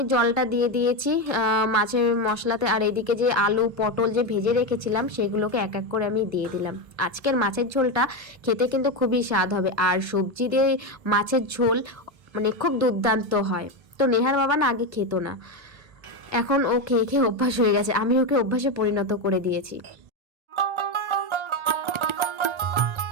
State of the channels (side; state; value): left; late; 1.3 ms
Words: জলটা দিয়ে দিয়েছি মাছের মশলাতে, আর এদিকে যে আলু পটল যে ভেজে রেখেছিলাম সেগুলোকে এক এক করে আমি দিয়ে দিলাম। আজকের মাছের ঝোলটা খেতে কিন্তু খুবই স্বাদ হবে, আর সবজি দিয়ে মাছের ঝোল মানে খুব দুর্দান্ত হয়। তো নেহার বাবা না আগে খেত না, এখন ও খেয়ে খেয়ে অভ্যাস হয়ে গেছে, আমি ওকে অভ্যাসে পরিণত করে দিয়েছি।